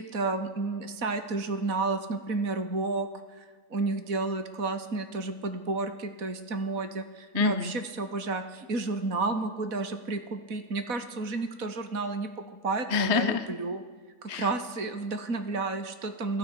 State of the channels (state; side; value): late; left; 4.1 ms